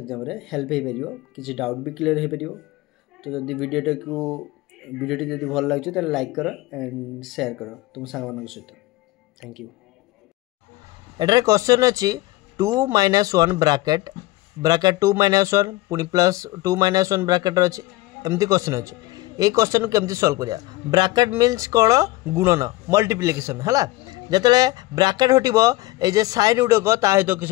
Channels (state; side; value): quieter; right; 19.0 dB